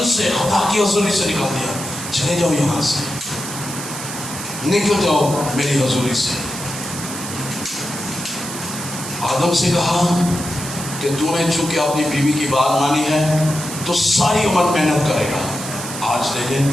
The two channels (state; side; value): noise; right; hiss, 8 dB below the sound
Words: سے، خدا کی حضوری سے نکال دیا، چلے جاؤ یہاں سے، نکل جاؤ میری حضوری سے۔ آدم سے کہا کہ تو نے چونکہ اپنی بیوی کی بات مانی ہے تو ساری عمر محنت کرے گا۔ آج دیکھیں